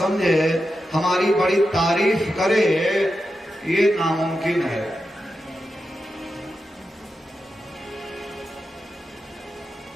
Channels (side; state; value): both; normal; correlation 0.89